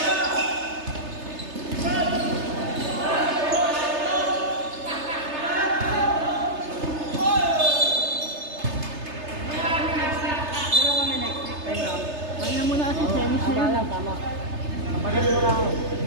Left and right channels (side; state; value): left; late; 3.3 ms